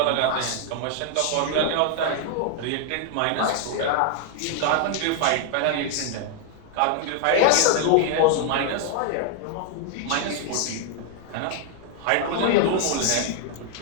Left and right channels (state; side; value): different; both; correlation 0.00